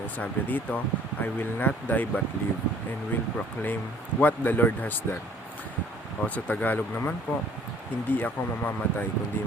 dito, I will not die but live and will proclaim what the Lord has done. O sa Tagalog naman po, hindi ako mamamatay kundi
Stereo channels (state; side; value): normal; both; correlation 0.56